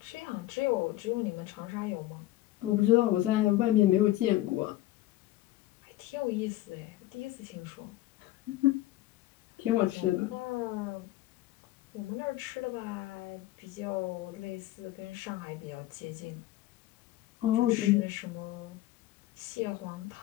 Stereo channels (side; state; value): right; quieter; 15.9 dB